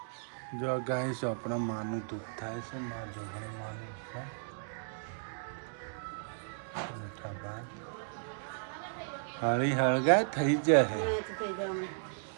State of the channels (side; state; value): left; silent; digital silence